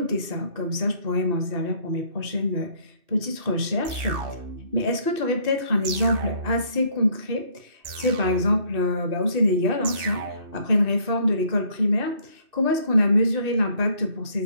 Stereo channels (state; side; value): late; left; 2.6 ms